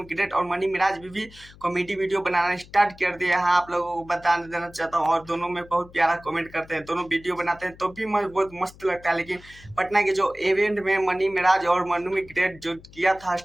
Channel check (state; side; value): noise; left; hum, 22 dB below the sound